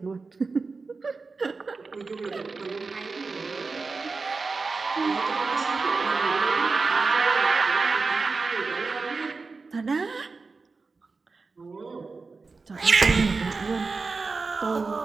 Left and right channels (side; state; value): left; quieter; 4.2 dB